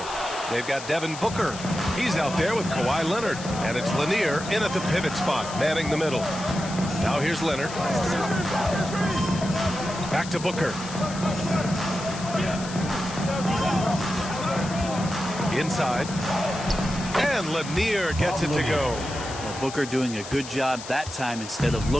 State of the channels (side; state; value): left; noise; hiss, 12 dB below the sound